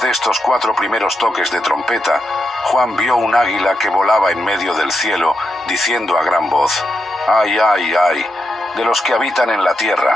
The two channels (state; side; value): normal; both; correlation 0.85